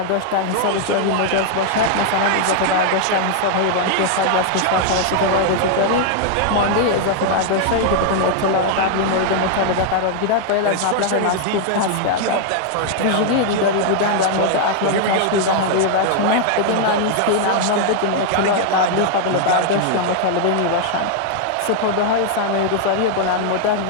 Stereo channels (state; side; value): different; both; correlation 0.00